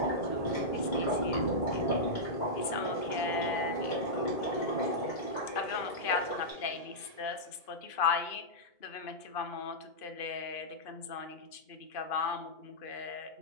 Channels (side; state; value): right; late; 2.5 ms